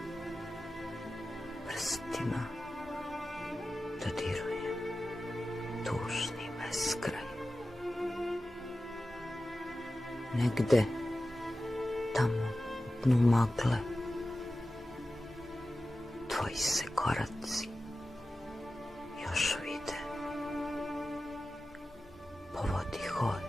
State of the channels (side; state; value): both; normal; correlation 0.94